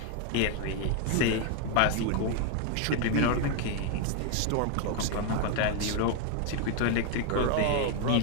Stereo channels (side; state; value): both; different; correlation 0.01